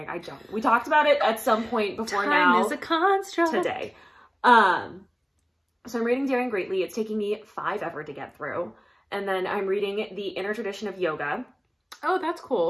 We talked about it at some point before now. Time is a construct. Today. So I'm reading Daring Greatly. It's taking me 5 ever to get through. And then I'm reading The Inner Tradition of Yoga. Oh, that's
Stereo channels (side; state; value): both; identical; correlation 1.00